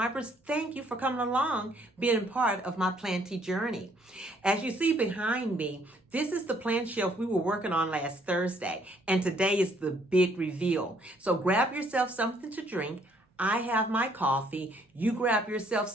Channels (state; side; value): normal; both; correlation 0.65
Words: thank you for coming along, being part of my planty journey. As you see behind me, this is the plant shelf we were working on last Thursday, and today is the big reveal. So grab yourself something to drink. I have my coffee. You grab yourself